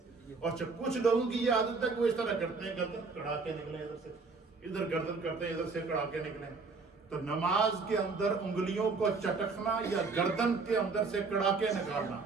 اور کچھ لوگوں کی یہ عادت ہے کہ وہ اس طرح کرتے ہیں، گردن کڑا کے نکلیں، ادھر سے ادھر گردن کرتے ہیں، ادھر سے کڑا کے نکلیں. تو نماز کے اندر انگلیوں کو چٹکنا یا گردن کے اندر سے کڑا کے نکالنا،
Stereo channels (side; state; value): left; quieter; 4.3 dB